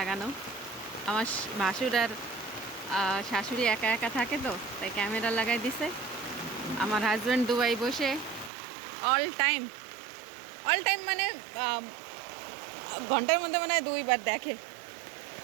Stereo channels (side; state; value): left; drops out; at 8.5 s